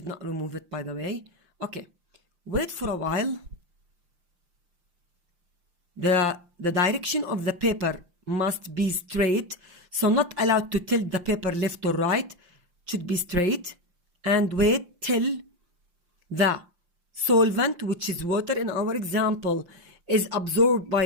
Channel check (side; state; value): left; late; 5.7 ms